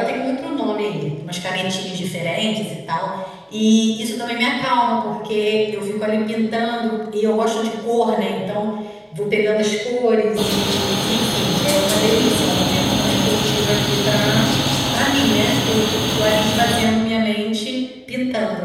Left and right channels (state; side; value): identical; both; correlation 1.00